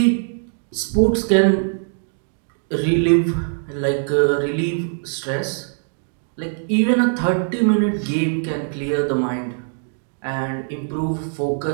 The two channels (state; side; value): silent; left; digital silence